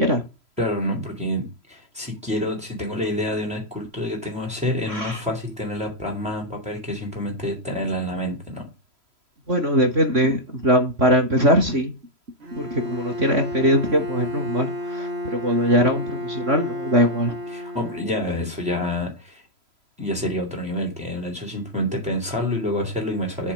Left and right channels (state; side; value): late; left; 3.0 ms